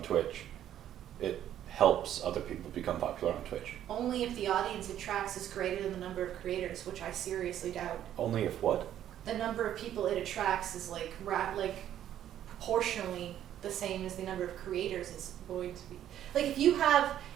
Twitch. It helps other people become popular on Twitch. Only if the audience it tracks is greater than the number of creators, which I seriously doubt. Only if what? The number of people it attracts is like proportionally the same as the number of creators it's going to be. Like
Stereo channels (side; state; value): left; quieter; 11.2 dB